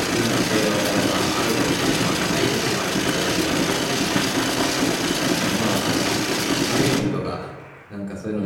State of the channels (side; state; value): both; identical; correlation 1.00